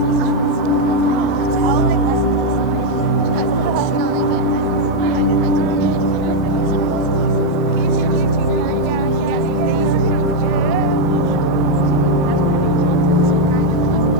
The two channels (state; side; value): normal; both; correlation 0.00